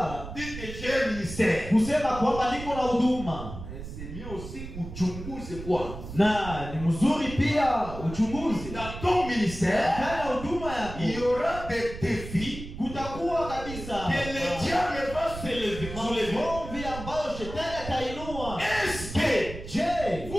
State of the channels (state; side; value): noise; right; rumble, 10 dB below the sound